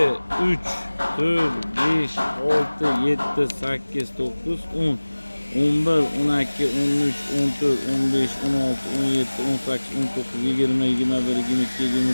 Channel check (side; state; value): both; inverted; correlation -1.00